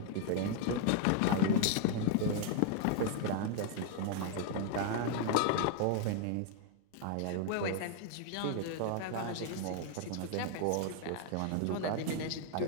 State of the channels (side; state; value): both; different; correlation 0.00